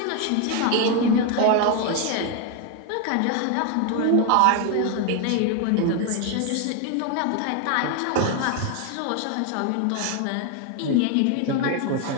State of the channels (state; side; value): different; both; correlation 0.01